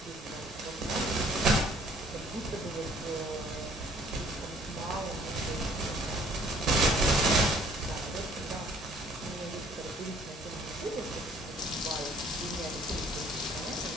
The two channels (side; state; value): both; normal; correlation 0.58